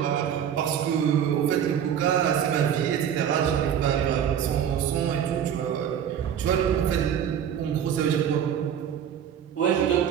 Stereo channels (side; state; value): left; quieter; 9.1 dB